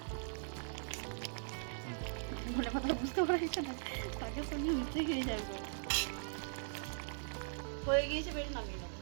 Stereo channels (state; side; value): silent; left; digital silence